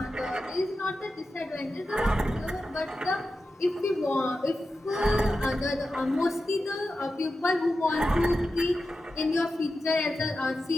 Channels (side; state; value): both; normal; correlation 0.91